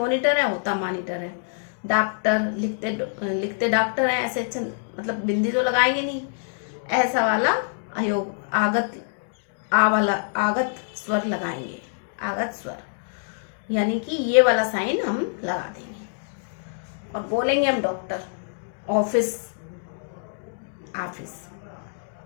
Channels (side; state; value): right; silent; digital silence